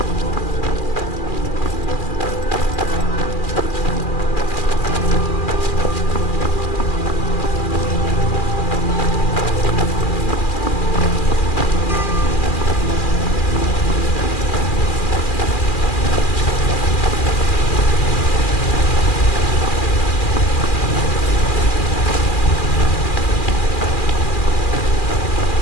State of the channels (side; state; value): right; late; 2.4 ms